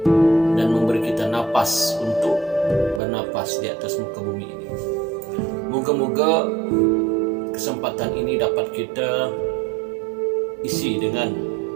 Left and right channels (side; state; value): left; drops out; at 3.0 s